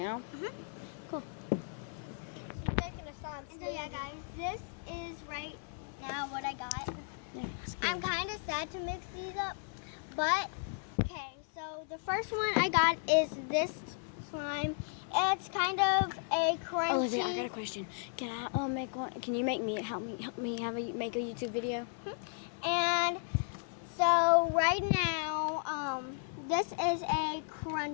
Cool. She's making a slime. And so yeah, guys, this is right now what I got. Yeah, I'm kind of sad to mix these up, but okay. So the first one I got is this slime. It's kind of a crunchy. Olivia, I got a question. Can I make one? Can you make me help me make a YouTube video? And so right now, this is a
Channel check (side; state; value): right; silent; 54 dB below the other